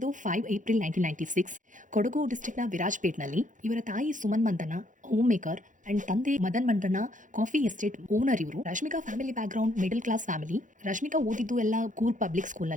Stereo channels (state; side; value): late; left; 0.37 ms